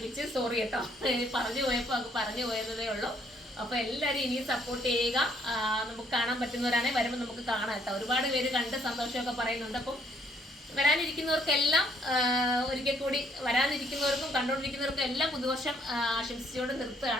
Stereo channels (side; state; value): both; normal; correlation 0.67